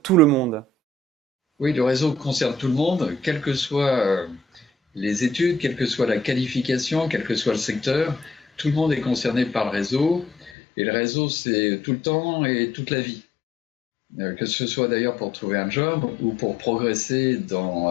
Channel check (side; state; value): right; drops out; at 10.5 s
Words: tout le monde? Oui, le réseau concerne tout le monde, quelles que soient les études, quelle que soit la qualification, quel que soit le secteur. Tout le monde est concerné par le réseau. Et le réseau, c'est tout le temps et toute la vie. Que ce soit d'ailleurs pour trouver un job ou pour progresser